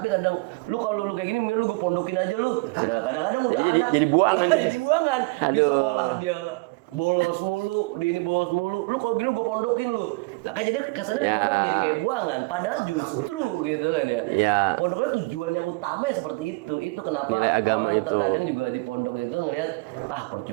kadang kalau lu kayak gini, mending lu gue pondokin aja lu. Nah kadang-kadang udah anak jadi buangan. jadi buangan di Aduh. sekolah dia bolos mulu, di ini bolos mulu. Lu kalau gini gue pondokin lu. Lah kan jadi kesannya pondok jadi kayak buangan. Padahal justru gitu kan ya. Pondoknya tujuan yang utama ya seperti itu. Itu kenapa Nilai agama orang itu. terkadang juga di pondok itu ngelihat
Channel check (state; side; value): quieter; left; 26.3 dB